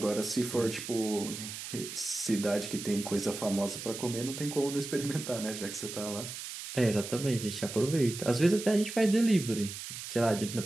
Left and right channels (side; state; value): right; noise; hiss, 9 dB below the sound